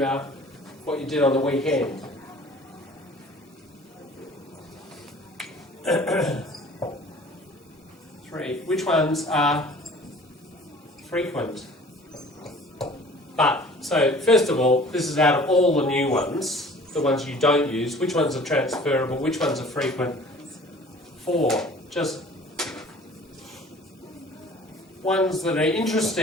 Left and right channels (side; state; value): both; normal; correlation 0.48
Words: what you did on the weekend. 3. Which ones are frequent? But, so first of all, this is out of all the new ones, the ones you don't use, which ones are transferable, which ones are frequent? 4. Just ones that are